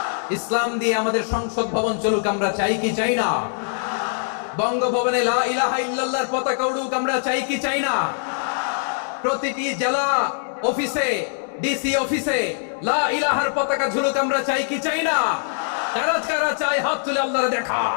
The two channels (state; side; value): silent; right; digital silence